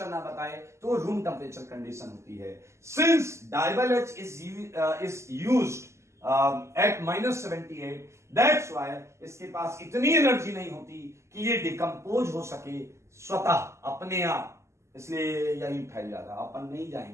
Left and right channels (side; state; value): left; late; 0.13 ms